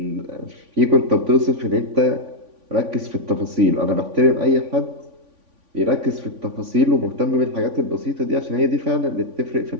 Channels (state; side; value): late; left; 3.5 ms